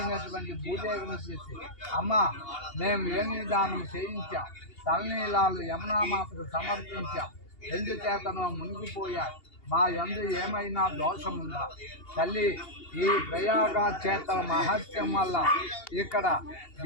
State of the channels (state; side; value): late; right; 2.8 ms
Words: భూదేవిని చేసి, అమ్మ, మేము ఏమి దానం చేయించాం, తలనీలాలు యమునామాతకు సమర్పించాం, ఎందుచేతనో మునిగిపోయారు. మా యందు ఏమైనా దోషముందా? తల్లి, ఈ ప్రయాగ క్షేత్ర మహత్యం వల్ల ఇక్కడ